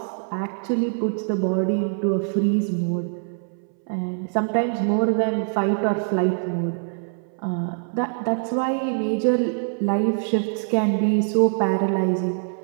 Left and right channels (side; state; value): left; silent; 63 dB below the other